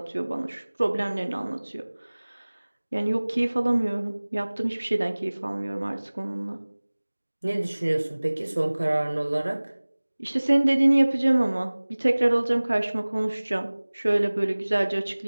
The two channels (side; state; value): both; inverted; correlation -1.00